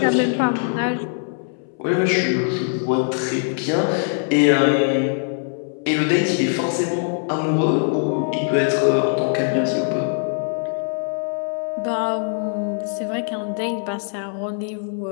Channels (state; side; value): silent; right; 64 dB below the other